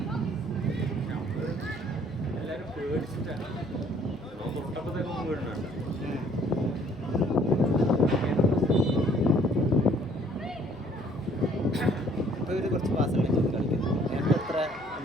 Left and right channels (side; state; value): left; noise; hum, 24 dB below the sound